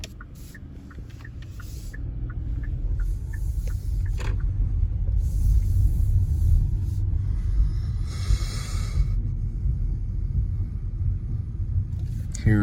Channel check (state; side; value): identical; both; correlation 1.00